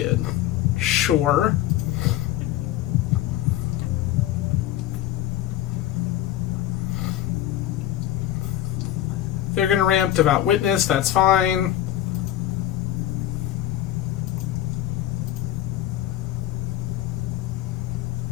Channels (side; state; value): right; quieter; 12.9 dB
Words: Sure. They're going to ramp Devout Witness, that's fine.